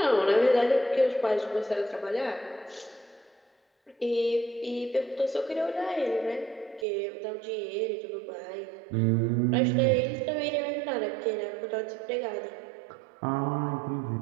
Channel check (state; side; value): drops out; left; at 6.9 s